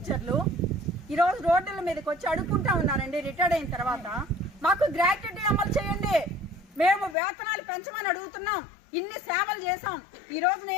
ఈ రోజు రోడ్ల మీదకి వచ్చి అడుక్కుంటా ఉన్నారండి. రిటైర్డ్ అయిన తర్వాత మాకు గ్రాట్యుటీ అమలు చేయండి, మేము వేతనాలు పెంచమని అడుగుతున్నాం. ఇన్ని సేవలు చేసాం. ఈ రోజు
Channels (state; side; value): drops out; right; at 7.2 s